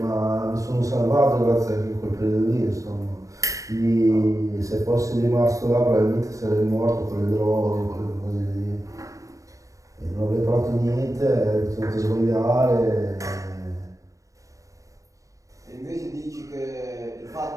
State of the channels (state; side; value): late; left; 0.16 ms